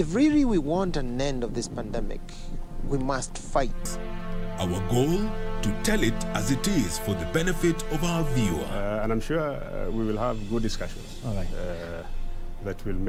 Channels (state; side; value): identical; both; correlation 1.00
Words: really we want an end of this pandemic, we must fight. Our goal, to tell it as it is for the benefit of our viewer. And I'm sure we will have good discussions. All right. That will